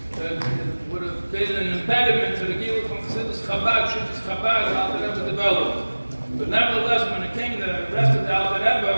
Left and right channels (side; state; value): both; inverted; correlation -1.00